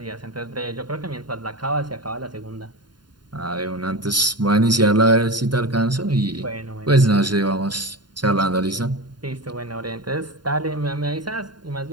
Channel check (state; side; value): late; left; 0.71 ms